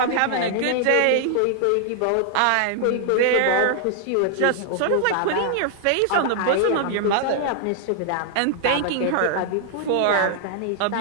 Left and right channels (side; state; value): both; different; correlation 0.00